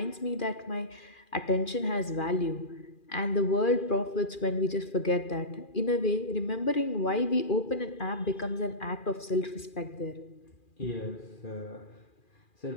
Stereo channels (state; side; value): late; right; 2.4 ms